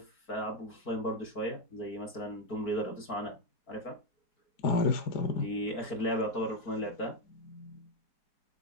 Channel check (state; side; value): late; right; 4.4 ms